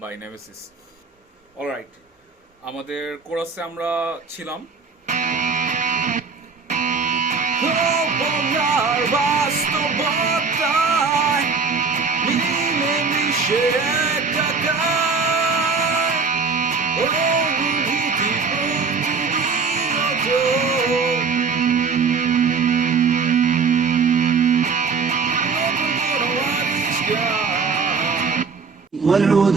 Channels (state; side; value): quieter; left; 5.0 dB